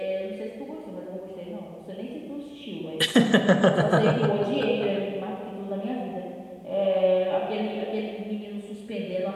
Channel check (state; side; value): identical; both; correlation 1.00